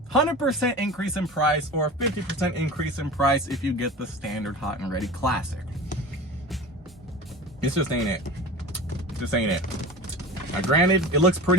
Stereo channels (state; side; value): normal; both; correlation 0.34